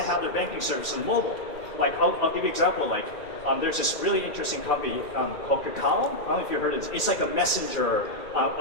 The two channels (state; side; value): late; right; 1.8 ms